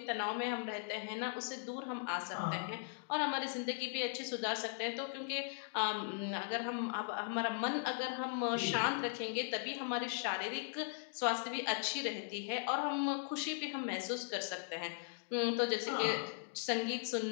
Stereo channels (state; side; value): silent; right; digital silence